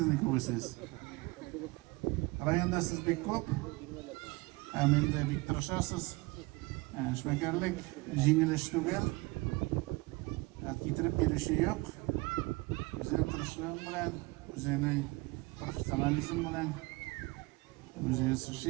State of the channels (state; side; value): quieter; left; 23.9 dB